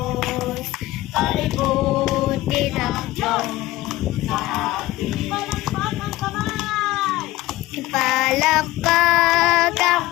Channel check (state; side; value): quieter; right; 17.4 dB